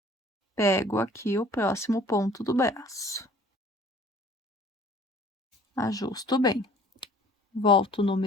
Pego aqui o próximo ponto do braço. Ajusto bem. Volto no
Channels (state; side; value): normal; both; correlation 0.52